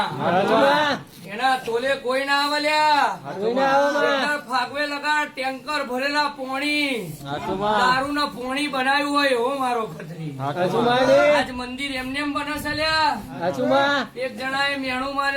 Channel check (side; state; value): both; identical; correlation 1.00